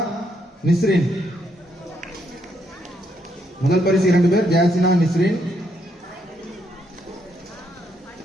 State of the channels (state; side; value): normal; both; correlation 0.75